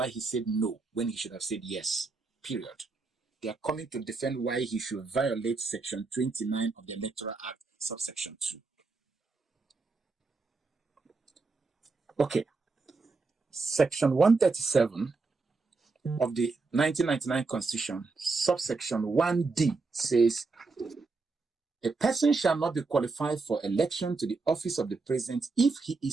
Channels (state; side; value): quieter; left; 4.0 dB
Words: he said no when he should have said yes, period. They are coming to defend why he should violate Section 29 of the Electoral Act, subsection 2. Okay. Section 137 of the 1999 Constitution, subsection 1D says, a person shall not be qualified for election to the office of the president if he